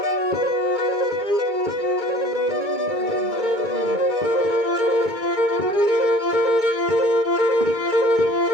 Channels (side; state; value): left; late; 2.2 ms